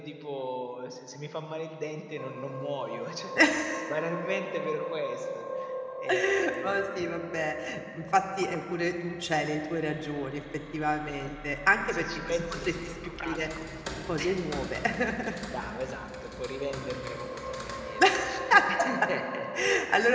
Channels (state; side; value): identical; both; correlation 1.00